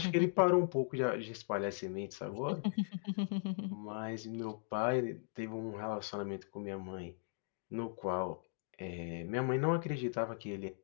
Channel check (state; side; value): silent; right; digital silence